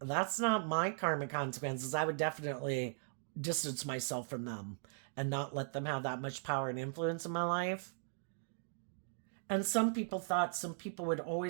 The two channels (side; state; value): left; silent; digital silence